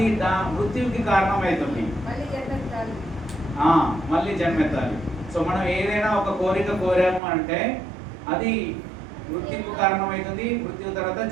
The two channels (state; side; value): drops out; left; at 7.2 s